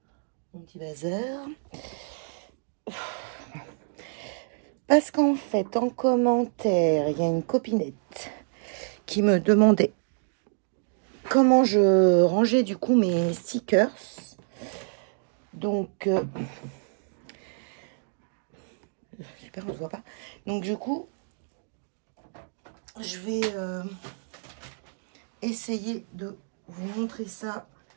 mon petit bazar. Parce qu'en fait, en commentaire, il y a une copinette qui me demandait comment je rangeais du coup mes stickers. Donc, super, on se voit pas. Donc, du coup, je vais essayer de vous montrer ça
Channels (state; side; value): silent; left; digital silence